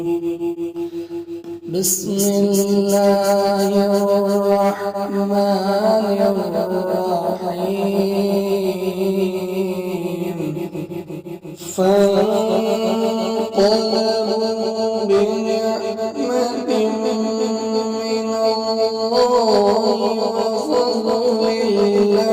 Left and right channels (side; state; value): both; identical; correlation 1.00